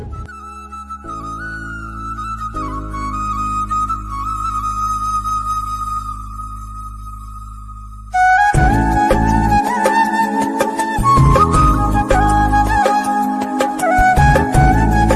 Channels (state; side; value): identical; both; correlation 1.00